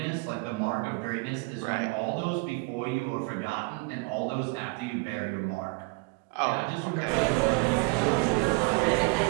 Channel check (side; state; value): left; quieter; 28.7 dB